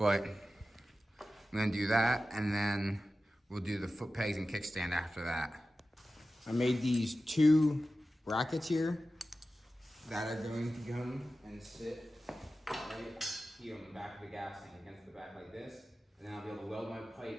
I'm gonna do that, and then we'll do the foot pegs and kickstand after that. I made these 2 brackets here that are going to come and sit right here on the back of the gas tank against the back like this, and then I'll be able to weld my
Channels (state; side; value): normal; both; correlation 0.94